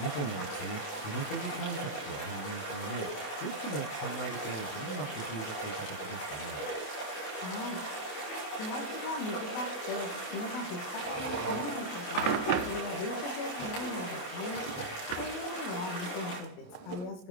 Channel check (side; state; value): right; late; 27 ms